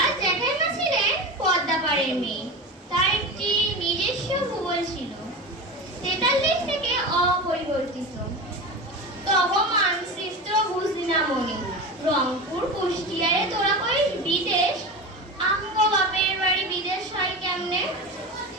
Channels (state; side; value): normal; both; correlation 0.26